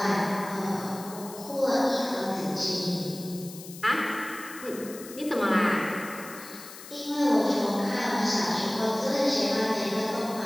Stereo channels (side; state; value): left; noise; hiss, 15 dB below the sound